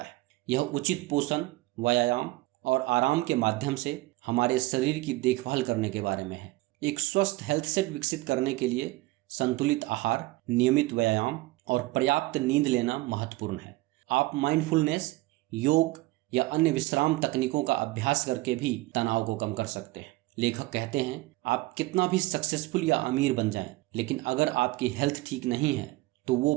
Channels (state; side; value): quieter; left; 19.9 dB